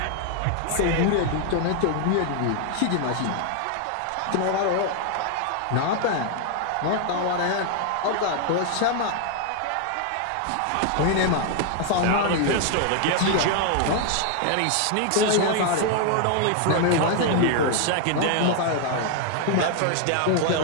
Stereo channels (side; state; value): both; different; correlation 0.00